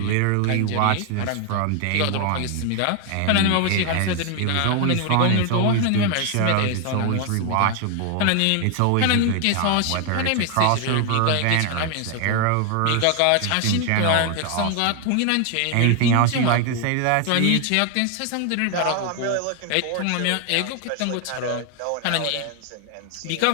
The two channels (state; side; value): different; both; correlation 0.00